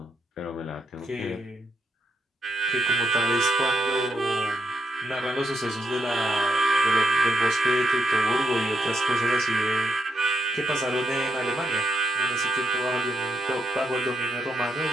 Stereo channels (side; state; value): both; normal; correlation 0.79